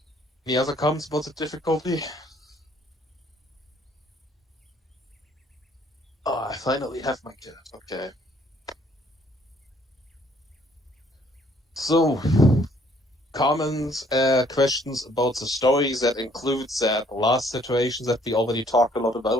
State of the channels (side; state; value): both; normal; correlation 0.63